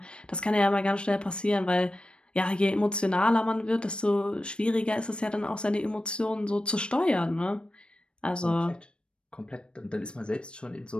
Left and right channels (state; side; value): late; right; 0.056 ms